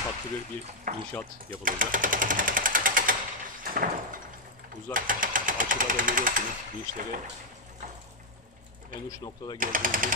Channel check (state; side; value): normal; both; correlation -0.02